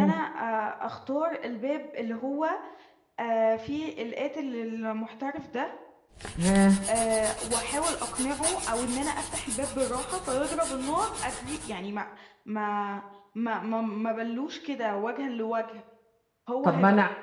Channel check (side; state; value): both; identical; correlation 1.00